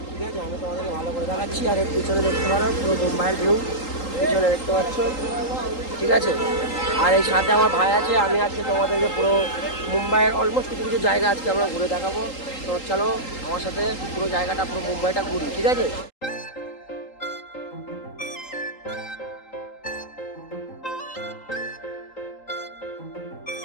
ঠিক আছে, আমি তোমাদেরকে ভালো করে দেখাচ্ছি। আর এর পিছনে দেখতে পারো পুরো মুম্বাইয়ের ভিউ, পিছনে দেখতে পাচ্ছ। ঠিক আছে, আর এই সাথে আমার ভাই আছে। আমি আজকে তোমাদেরকে পুরো মুম্বাইয়ের অলমোস্ট কিছু কিছু জায়গা আজকে আমরা ঘুরে দেখাবো। তো চলো আমার সাথে পুরো জায়গাটা, পুরো মুম্বাইটা ঘুরি। ঠিক আছে,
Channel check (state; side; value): late; right; 3.8 ms